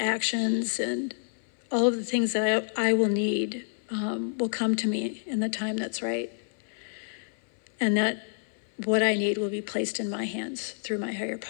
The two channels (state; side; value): silent; right; 58 dB below the other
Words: and all of the things that I will need will come to me in the time that's right. And that what I need will be placed in my hands through my higher